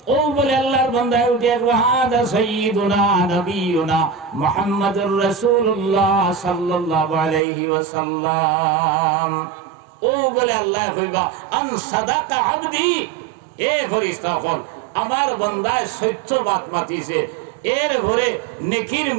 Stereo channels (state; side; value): drops out; left; at 7.4 s